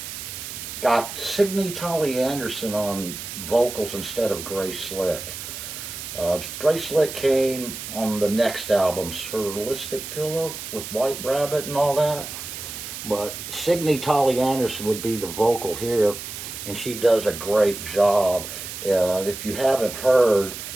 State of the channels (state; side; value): noise; right; hiss, 9 dB below the sound